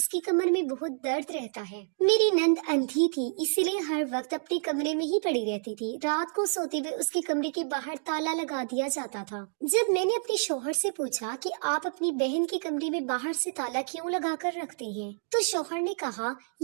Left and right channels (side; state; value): left; silent; 59 dB below the other